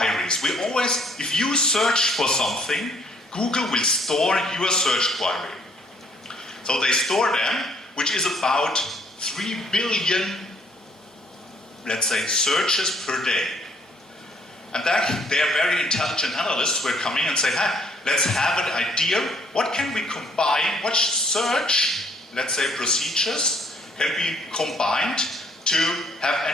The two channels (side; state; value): both; normal; correlation 0.64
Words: We always, if you search for something, Google will store your search query. So they store them, which is about 3 billion, let's say, searches per day. And then they are very intelligent analysts who are coming and say, hey, let's have an idea, what can we combine, what search, let's say, procedures can be combined to have